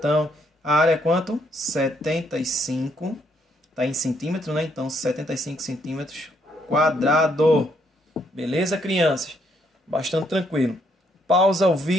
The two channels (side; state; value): both; normal; correlation 0.72